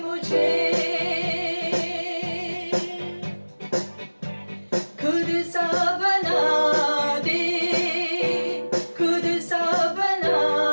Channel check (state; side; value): inverted; both; correlation -1.00